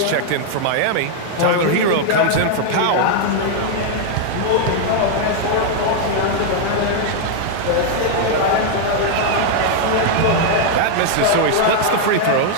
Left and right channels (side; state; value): both; different; correlation 0.00